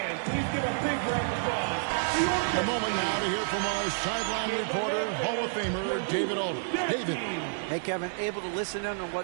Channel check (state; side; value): silent; left; 58 dB below the other